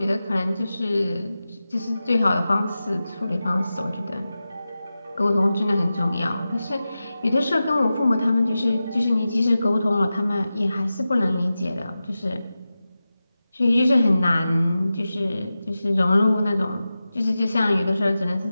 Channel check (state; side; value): inverted; both; correlation -0.94